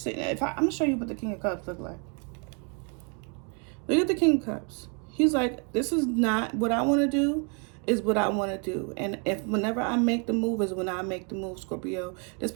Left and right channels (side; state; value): left; quieter; 37.2 dB